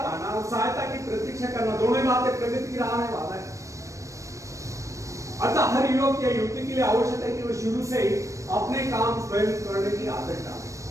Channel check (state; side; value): late; left; 0.15 ms